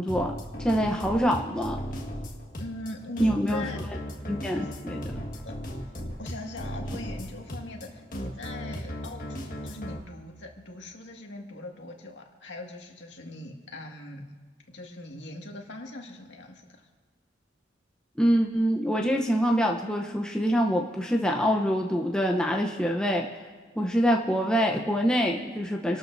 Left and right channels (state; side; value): normal; both; correlation 0.80